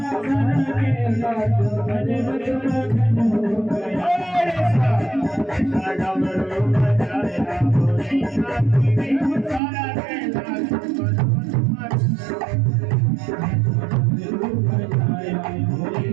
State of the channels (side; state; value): left; drops out; at 9.6 s